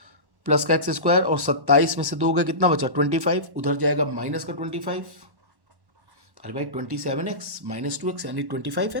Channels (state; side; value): late; left; 1.1 ms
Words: प्लस का x², और 27 में से 2 गए कितना बचा 25, उधर जाएगा माइनस का 25। अरे भाई 27x - 2x यानी